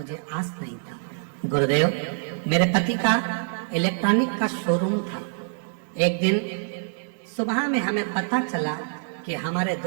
आस नहीं था। गुरुदेव, मेरे पति का इलेक्ट्रॉनिक का शोरूम था। एक दिन सुबह में हमें पता चला कि हमारे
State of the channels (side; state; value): left; silent; 61 dB below the other